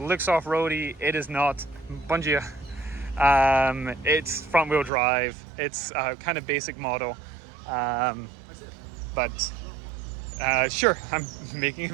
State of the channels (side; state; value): left; drops out; at 4.9 s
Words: off-roady. It is not. Bom dia. It's front-wheel drive. It's kind of basic model, but sure, I'm making a